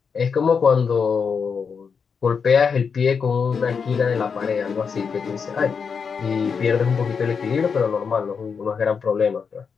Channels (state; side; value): quieter; right; 5.9 dB